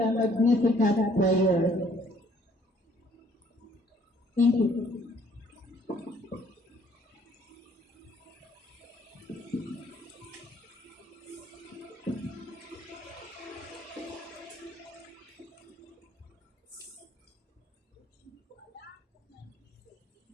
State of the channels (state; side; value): normal; both; correlation 0.62